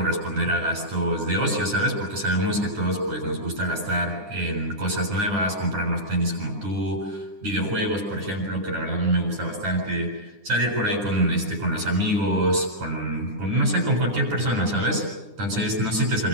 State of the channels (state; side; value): late; left; 9.8 ms